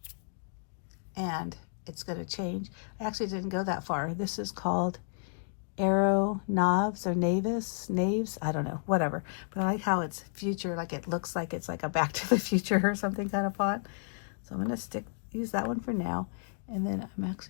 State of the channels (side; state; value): right; silent; digital silence